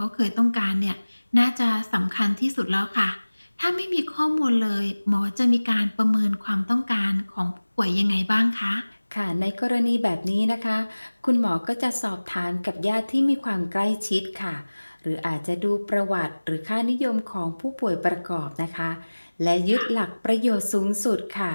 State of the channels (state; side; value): inverted; both; correlation -1.00